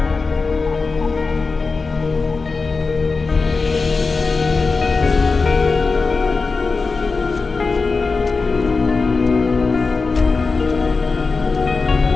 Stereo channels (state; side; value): quieter; right; 4.2 dB